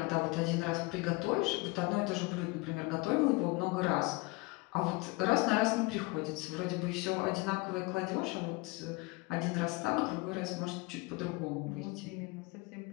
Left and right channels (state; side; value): quieter; right; 24.3 dB